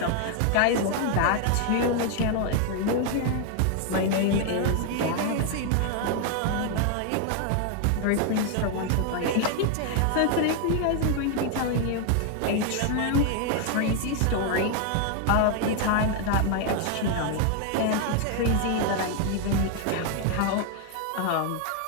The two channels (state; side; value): different; both; correlation 0.00